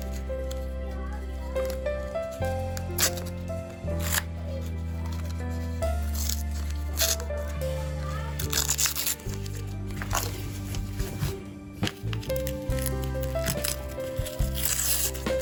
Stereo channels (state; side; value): identical; both; correlation 1.00